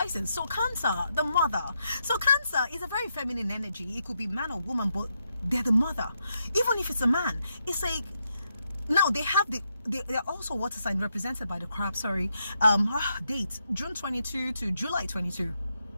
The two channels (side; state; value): both; inverted; correlation -0.82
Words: So Cancer, the mother. So Cancer is a very feminine energy. It could be man or woman, but they're the mother. Even if it's a man, it's like, now they have they're also water sign represented by the crab. Date June 22 to July 22.